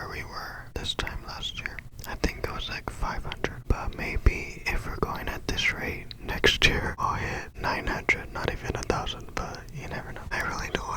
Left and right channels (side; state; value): both; identical; correlation 1.00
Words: we were this time last year. I think it was like 500, but maybe if we're going at this rate, next year I'll hit 900, not even 1,000, but you never know. I really don't